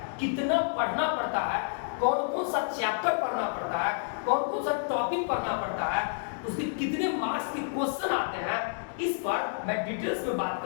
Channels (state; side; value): silent; right; digital silence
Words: कितना पढ़ना पड़ता है, कौन कौन सा चैप्टर पढ़ना पड़ता है, कौन कौन सा टॉपिक पढ़ना पड़ता है, उसके कितने मार्क्स के क्वेश्चन आते हैं, इस पर मैं डिटेल्स में बात